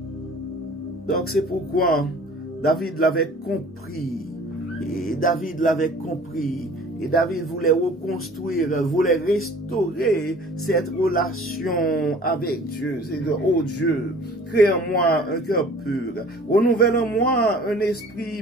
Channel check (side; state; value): both; normal; correlation 0.48